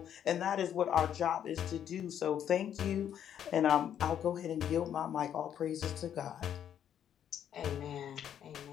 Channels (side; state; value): right; quieter; 9.6 dB